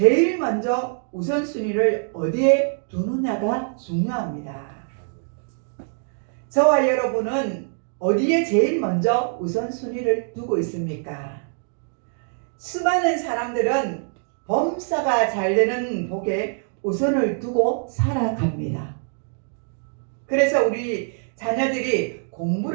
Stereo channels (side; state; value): left; silent; 63 dB below the other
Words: 먼저 우선순위를 어디에 두느냐가 중요합니다. 저와 여러분은 어디에 제일 먼저 우선순위를 두고 있습니까? 수많은 사람들은 범사가 잘 되는 복에 우선을 두고 살아갑니다. 그래서 우리 자녀들이